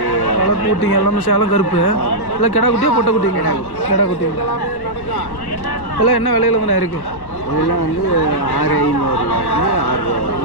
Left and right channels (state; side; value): late; right; 1.1 ms